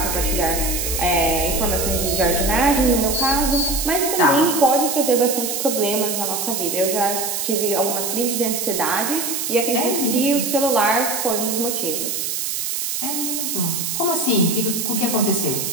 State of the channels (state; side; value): noise; right; hiss, 2 dB below the sound